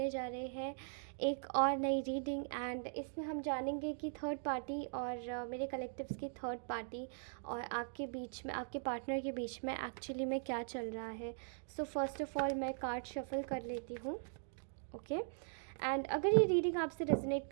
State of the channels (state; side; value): silent; left; digital silence